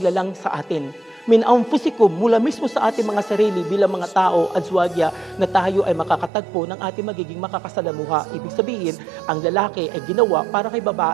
sa atin. Min anfusikum, mula mismo sa ating mga sarili bilang mga tao, azwajya, na tayo ay makakatagpo ng ating magiging makakasalamuha. Ibig sabihin, ang lalaki ay ginawa para kay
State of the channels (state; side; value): drops out; left; at 6.3 s